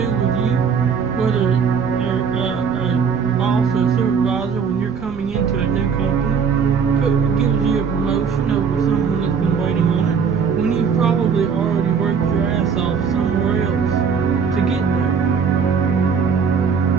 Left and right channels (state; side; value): quieter; left; 6.3 dB